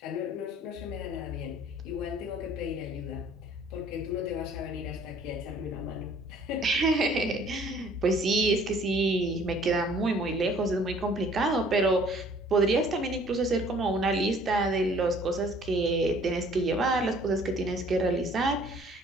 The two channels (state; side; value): normal; both; correlation 0.56